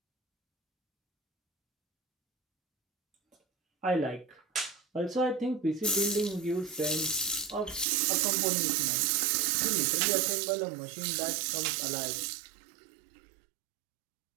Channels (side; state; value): left; drops out; at 7.9 s